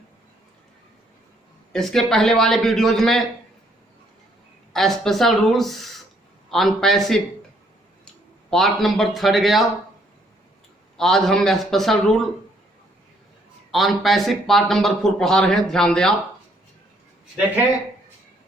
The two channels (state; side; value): normal; both; correlation 0.67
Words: इसके पहले वाले वीडियोज में special rules on passive part number 3 गया। आज हम special rule on passive part number 4 पढ़ा रहे हैं। ध्यान दें, आप देखें,